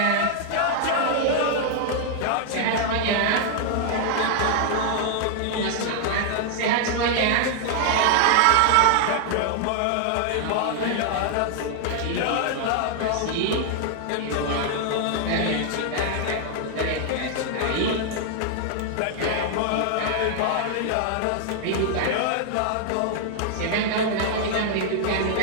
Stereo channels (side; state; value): both; different; correlation 0.00